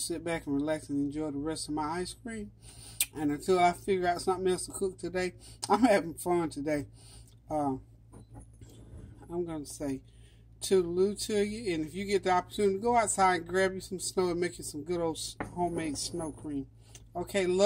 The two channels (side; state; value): both; identical; correlation 1.00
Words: back and relax and enjoy the rest of my ice cream. And until I figure out something else to cook today, I'm having fun today. I'm going to say toodaloo to you. And if you get the opportunity, go outside and grab you some snow and make you some good old homemade snow cream. Okay,